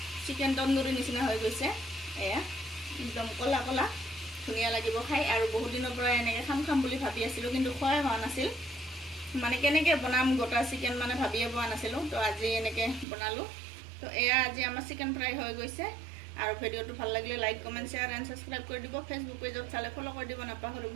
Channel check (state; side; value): drops out; left; at 13.1 s